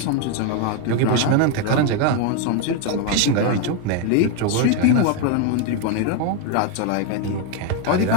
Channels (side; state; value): both; different; correlation 0.01